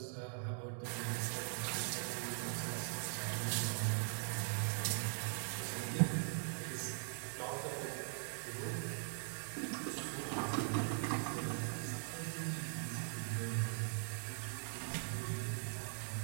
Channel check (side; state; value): left; silent; 50 dB below the other